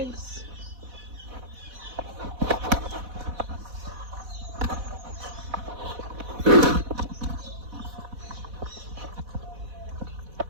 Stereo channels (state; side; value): late; left; 4.1 ms